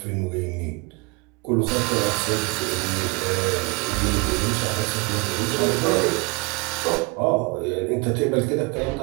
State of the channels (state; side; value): quieter; left; 28.0 dB